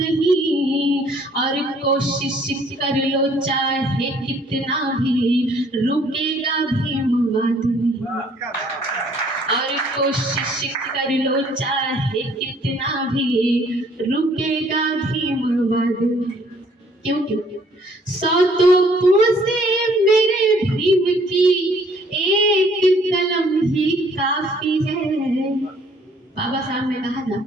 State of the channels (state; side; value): normal; both; correlation 0.60